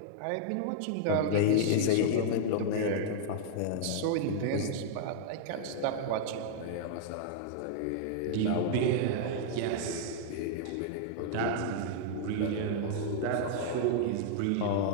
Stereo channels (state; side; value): different; both; correlation -0.01